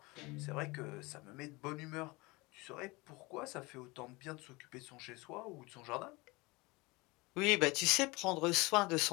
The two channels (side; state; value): right; quieter; 24.0 dB